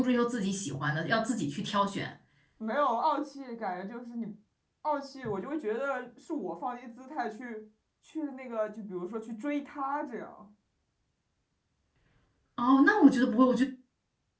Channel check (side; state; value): both; identical; correlation 1.00